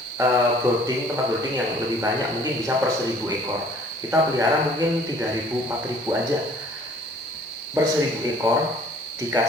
tempat brooding yang lebih banyak, mungkin bisa per 1000 ekor. Kita pelihara mungkin 3000 4000 aja per 1000 ekor,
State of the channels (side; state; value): both; normal; correlation 0.54